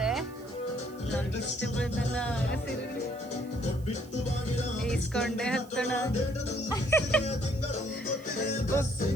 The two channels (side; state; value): right; noise; hiss, 25 dB below the sound